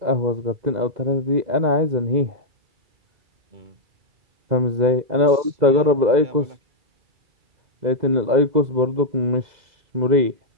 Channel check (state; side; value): late; left; 2.0 ms